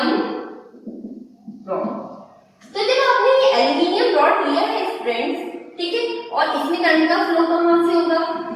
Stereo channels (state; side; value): identical; both; correlation 1.00